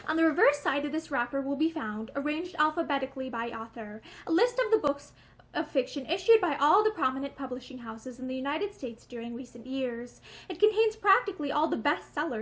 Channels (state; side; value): identical; both; correlation 1.00